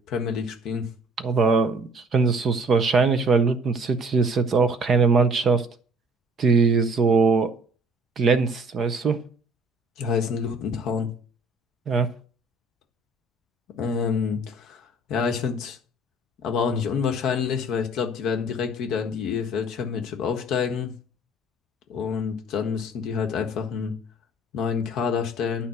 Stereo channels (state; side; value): normal; both; correlation 0.53